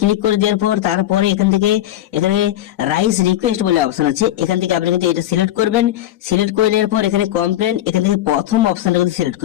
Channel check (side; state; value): right; quieter; 13.3 dB